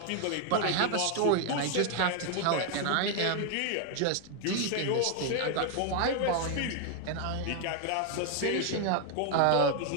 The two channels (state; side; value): different; both; correlation 0.00